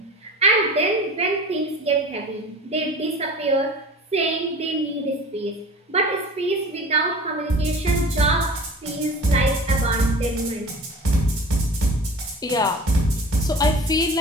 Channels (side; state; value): both; normal; correlation 0.40